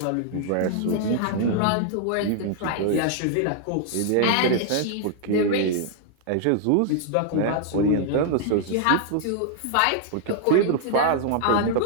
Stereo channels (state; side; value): different; both; correlation 0.00